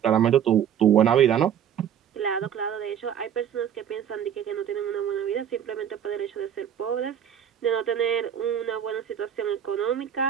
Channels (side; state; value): left; quieter; 9.1 dB